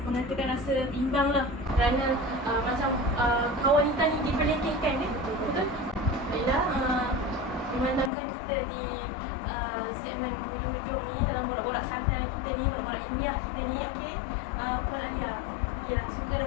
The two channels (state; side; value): drops out; right; at 8.1 s